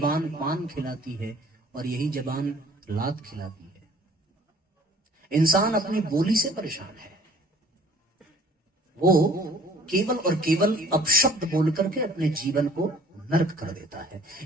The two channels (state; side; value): normal; both; correlation 0.53